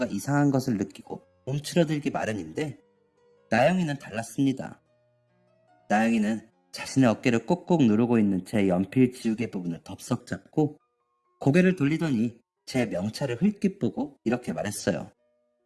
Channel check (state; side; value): identical; both; correlation 1.00